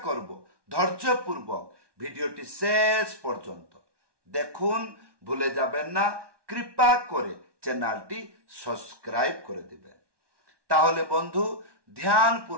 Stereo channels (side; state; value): left; late; 1.2 ms